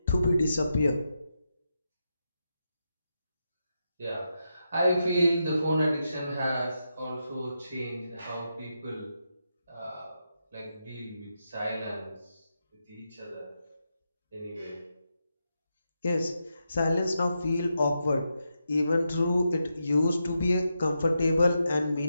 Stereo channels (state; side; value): inverted; both; correlation -0.85